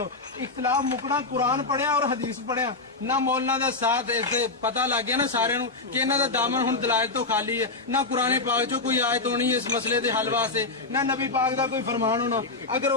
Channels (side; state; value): right; quieter; 3.6 dB